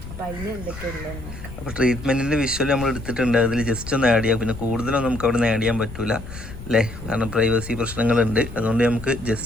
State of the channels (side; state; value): left; noise; rumble, 12 dB below the sound